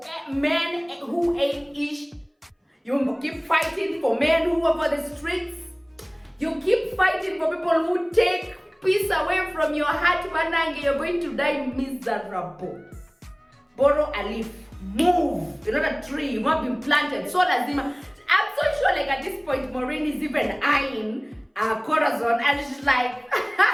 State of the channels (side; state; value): both; identical; correlation 1.00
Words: men who ain't ish. You keep fighting for men who are for the streets. You keep fighting for people who take peace away from your heart, Manange. You're going to die miserable. Borrow a leaf. Move. You're not a tree. You've not been planted. So lazima. I'm so sure like at this point, Maureen is even eyeing Corazon, and she's like,